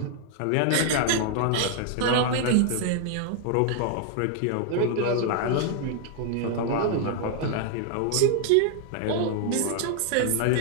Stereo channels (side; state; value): both; different; correlation 0.00